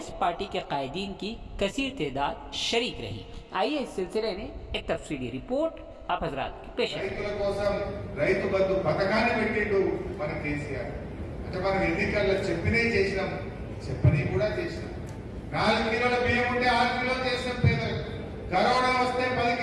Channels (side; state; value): both; identical; correlation 1.00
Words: पार्टी के कायदीन की कसीर तादाद शरीक रही। आइए इस सिलसिले में एक तफसीली रिपोर्ट आप हजरात की पेश है। రైతు బంధు పథకాన్ని పెట్టిండు మన KCR. అంటే మనం ఎన్నికల్లో చెప్పని కూడా చేసినాం. 4 కిలోల బియ్యం ఉంటే 6 కిలోలు చేసిన పేదలకు, కరోనా వస్తే 10